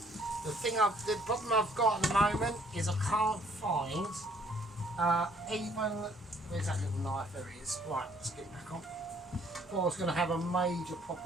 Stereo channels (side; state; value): both; normal; correlation 0.62